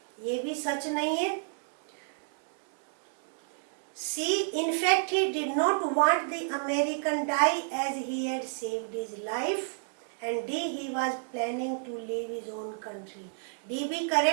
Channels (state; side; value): silent; left; digital silence